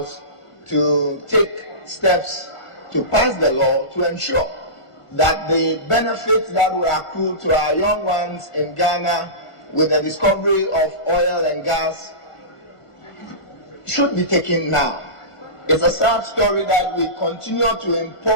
to take steps to pass the law to ensure that the benefits that will accrue to our young ones in Ghana with the discovery of oil and gas should be taken now. It's a sad story that we continue to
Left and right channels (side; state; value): right; late; 1.5 ms